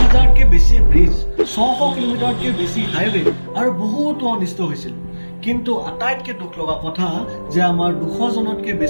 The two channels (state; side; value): inverted; both; correlation -1.00